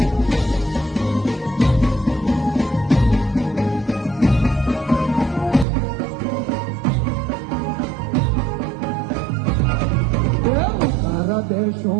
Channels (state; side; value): drops out; left; at 5.7 s